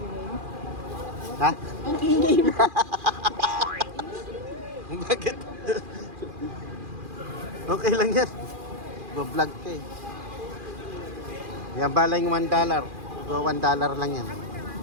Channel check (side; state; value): left; late; 2.4 ms